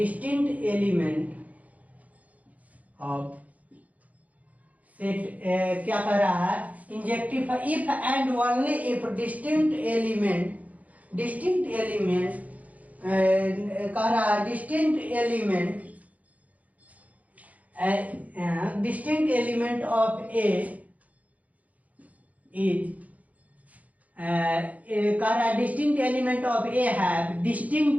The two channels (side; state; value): left; late; 0.073 ms